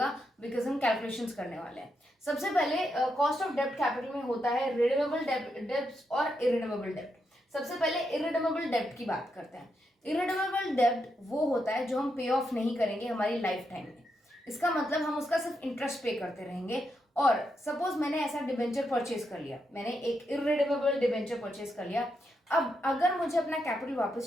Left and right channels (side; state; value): both; normal; correlation 0.82